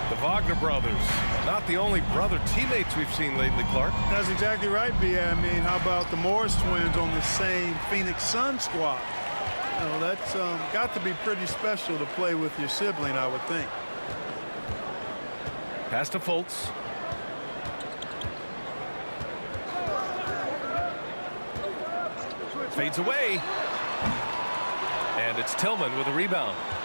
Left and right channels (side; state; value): both; inverted; correlation -1.00